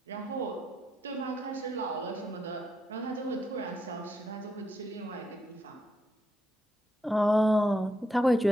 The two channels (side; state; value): both; normal; correlation 0.80